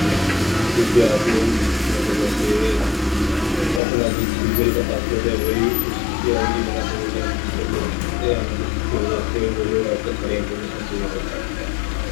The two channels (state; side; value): drops out; right; at 3.8 s